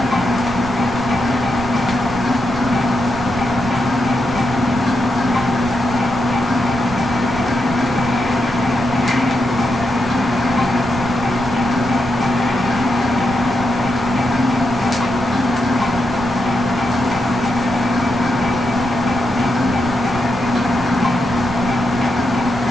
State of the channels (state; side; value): noise; right; rumble, 13 dB below the sound